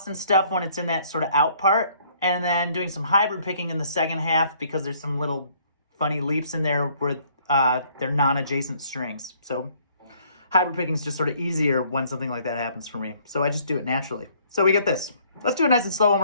and stuff when it's in that sort of out part, and then doing some hybrid picking in the second half because there's some little funny leaps in there where they're non-adjacent strings. So hybrid picking is just sort of easier when something like that happens for me. So I just do it naturally. So we get this. Let's do it nice and slow one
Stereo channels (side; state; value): both; inverted; correlation -0.62